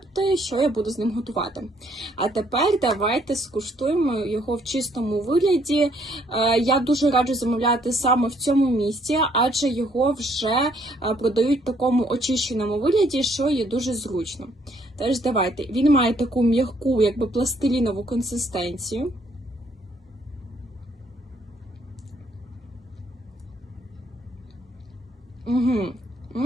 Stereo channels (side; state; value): both; normal; correlation 0.67